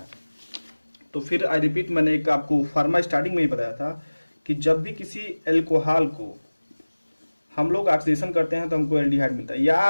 तो फिर आई रिपीट, मैंने एक आपको फार्मा स्टार्टिंग में ही बताया था कि जब भी किसी एल्कोहल को हम लोग ऑक्सीडेशन करते हैं तो हमको एल्डिहाइड मिलता है।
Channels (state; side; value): inverted; both; correlation -1.00